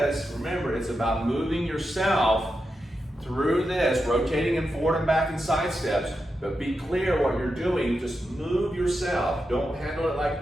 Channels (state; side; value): normal; both; correlation 0.88